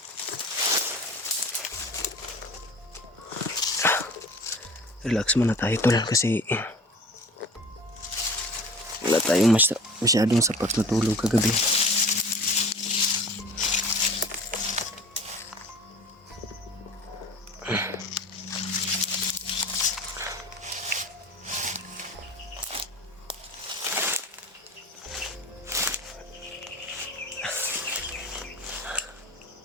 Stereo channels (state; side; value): normal; both; correlation 0.41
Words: Relax muna tayo, tol, kasi wala tayong masyadong sapat na tulog kagabi.